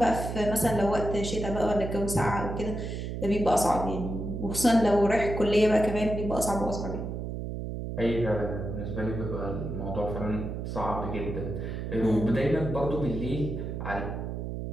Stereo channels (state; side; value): noise; right; hum, 5 dB below the sound